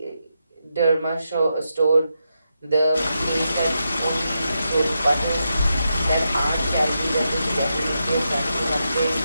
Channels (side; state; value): both; inverted; correlation -0.85